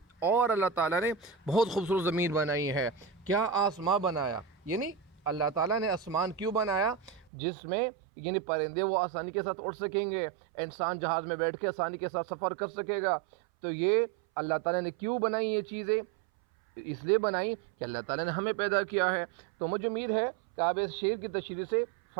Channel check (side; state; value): left; drops out; at 7.2 s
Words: اور اللہ تعالیٰ نے بہت خوبصورت زمین بنائی ہے۔ کیا آسمان بنایا، یعنی اللہ تعالیٰ نے آسمان کیوں بنایا؟ جس میں یعنی پرندے وہ آسانی کے ساتھ اڑ سکیں گے، انسان جہاز میں بیٹھ کے آسانی کے ساتھ سفر کر سکے گا۔ تو یہ اللہ تعالیٰ نے کیوں بنائی یہ چیزیں؟ اس لیے بنائی کہ اللہ تعالیٰ نے ہمیں پیدا کیا ہے۔ تو مجھے امید ہے کہ آپ اس شعر کی تشریح سے